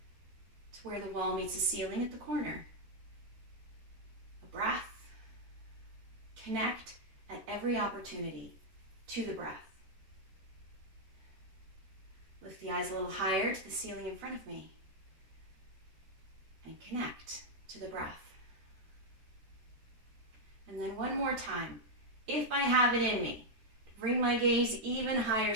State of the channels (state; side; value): late; left; 13 ms